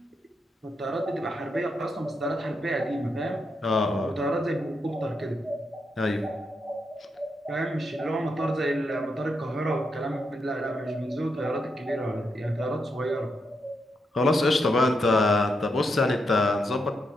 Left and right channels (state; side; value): normal; both; correlation 0.82